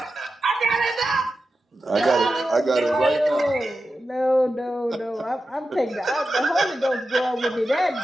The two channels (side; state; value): both; normal; correlation 0.92